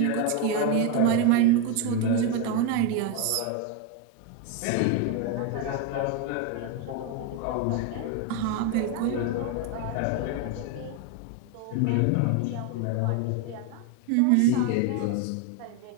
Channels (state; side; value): different; both; correlation 0.02